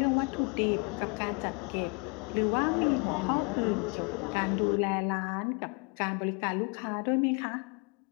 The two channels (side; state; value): right; quieter; 33.8 dB